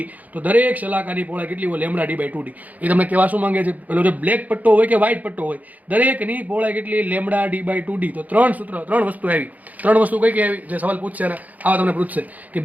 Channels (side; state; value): left; late; 0.078 ms